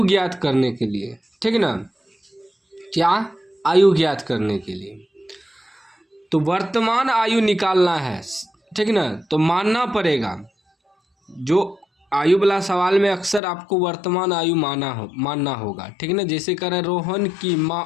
ज्ञात करने के लिए। ठीक ना। क्या आयु ज्ञात करने के लिए तो वर्तमान आयु निकालना है। ठीक ना। तो मानना पड़ेगा, जो आयु वाला सवाल में अक्सर आपको वर्तमान आयु मानना होगा। ठीक ना। जैसे कह रहे रोहन की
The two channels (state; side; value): drops out; right; at 13.4 s